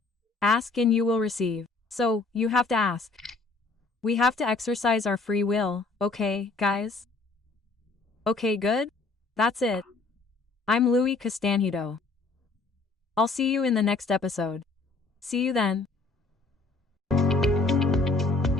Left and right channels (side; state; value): right; quieter; 3.6 dB